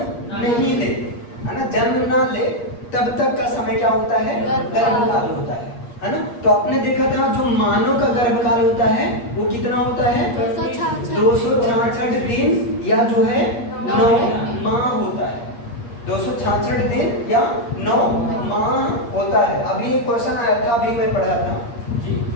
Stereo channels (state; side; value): late; right; 8.5 ms